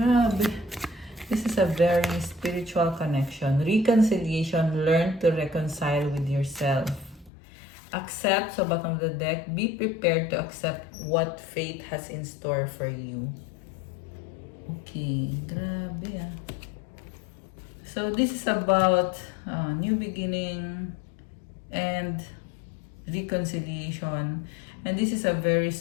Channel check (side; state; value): right; drops out; at 7.3 s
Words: This is a very spiritual connection. Reconciliation. Learn to reconcile with yourself. Accept sa bottom of the deck. Be prepared to accept what fate has in store for you. Okay. Grabe ah. So this is about new beginning and reconciliation. And this is a very